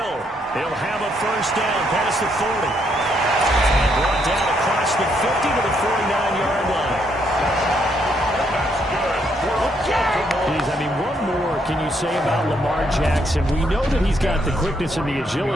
He'll have a first down past the 40. And brought down across the 50 to the 49-yard line. That's good. Geez, I mean, what more can you say about Lamar Jackson? We know that he's got the quickness and the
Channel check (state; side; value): normal; both; correlation 0.73